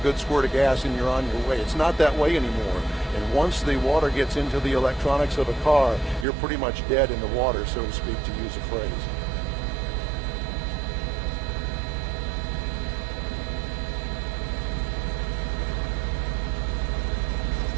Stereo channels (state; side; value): drops out; left; at 6.2 s